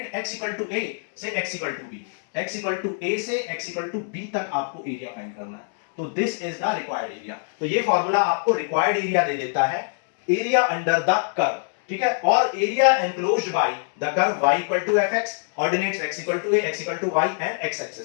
x equal to a से x equal to b, x equal to a से x इक्वल टू b तक आपको एरिया फाइंड करना है। तो this is the required area. तो ये फार्मूला आपको रिक्वायर्ड एरिया दे देता है, एरिया अंडर द कर्व। ठीक है, और area enclosed by the curve y equal to fx, ordinates x equal to a, x equal to y and x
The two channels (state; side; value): silent; right; digital silence